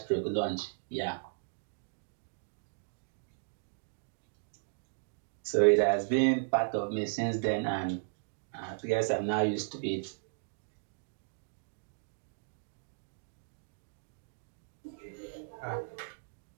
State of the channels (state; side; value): silent; left; digital silence